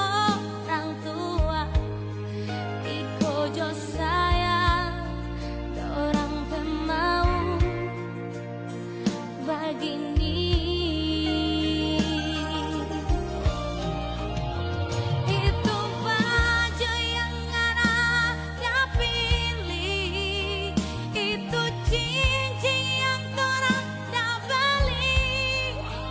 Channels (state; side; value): identical; both; correlation 1.00